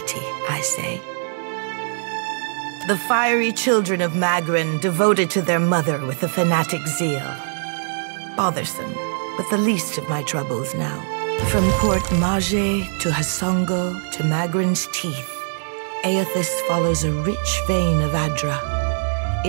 I say. The fiery children of Magran devoted to their mother with a fanatic zeal. Bothersome, but the least of my troubles now. From Port Mage to Hasongo to Magran's teeth, Aethys follows a rich vein of Adra.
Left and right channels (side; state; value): left; silent; digital silence